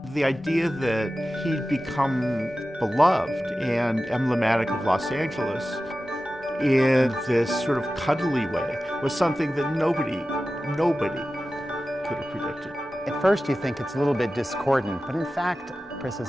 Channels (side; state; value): both; normal; correlation 0.94